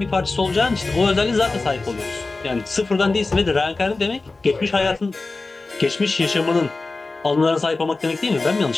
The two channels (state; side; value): quieter; right; 3.5 dB